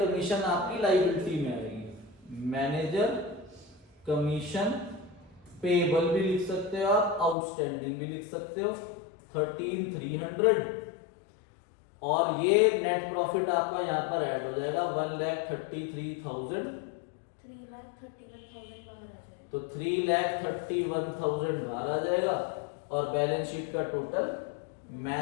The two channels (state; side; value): drops out; right; at 7.4 s